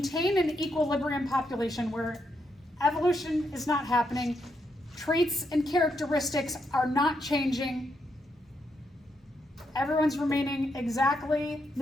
an equilibrium population where evolution is not happening, traits and characteristics are not changing, everyone's remaining exactly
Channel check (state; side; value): normal; both; correlation 0.80